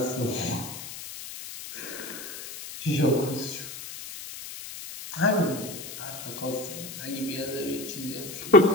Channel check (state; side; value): noise; left; hiss, 10 dB below the sound